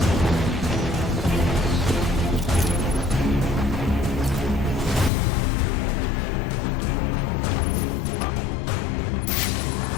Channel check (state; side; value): drops out; right; at 5.1 s